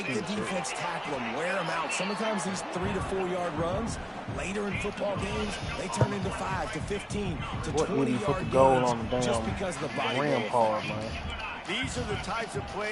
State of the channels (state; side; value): identical; both; correlation 1.00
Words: the defense tackle them, wear them out. Sometimes these 3 to 4 yard runs, later in football games, they turn into 5 to 15 to What 20 would he put yard the goal gains on the just damn because of the body rim blow. part, man? These are the types of